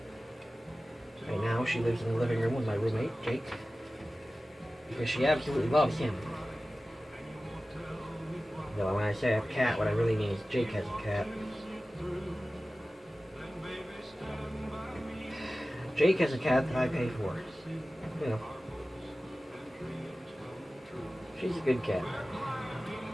Right now, she lives in the living room with my roommate, Jake, because she absolutely loves him. Though when I say I have a cat, what I really mean is Jake has a cat. Jake has a cat that I pay for. You know. She's a good cat.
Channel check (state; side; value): normal; both; correlation 0.96